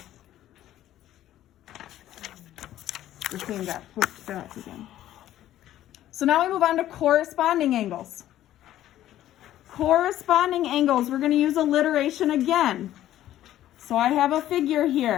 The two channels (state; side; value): quieter; right; 13.0 dB